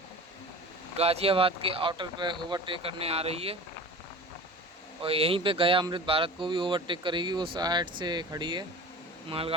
गाजियाबाद के आउटर पे ओवरटेक करने आ रही है और यहीं पे गया अमृत भारत को भी ओवरटेक करेगी। वो साइड से खड़ी है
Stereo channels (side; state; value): both; normal; correlation 0.37